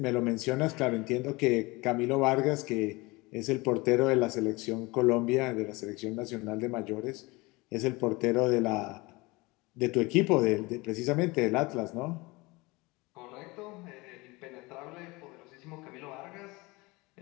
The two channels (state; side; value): quieter; right; 23.6 dB